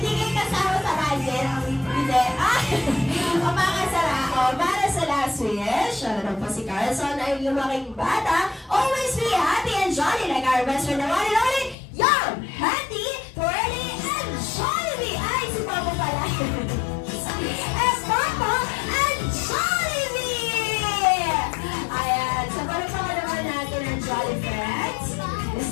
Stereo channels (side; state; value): right; drops out; at 11.8 s